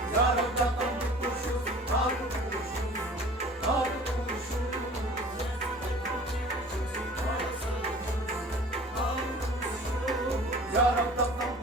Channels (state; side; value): normal; both; correlation 0.45